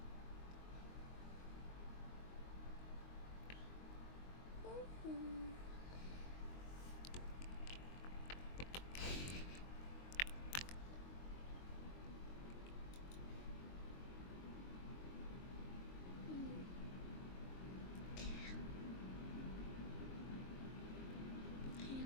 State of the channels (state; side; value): late; right; 22 ms